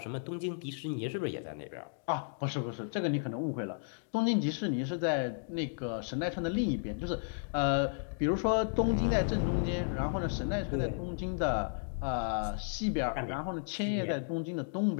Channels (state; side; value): silent; right; digital silence